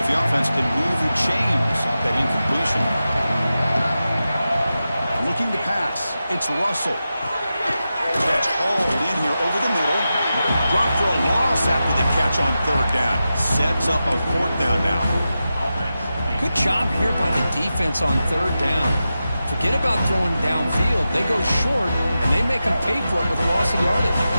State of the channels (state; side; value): inverted; both; correlation -0.92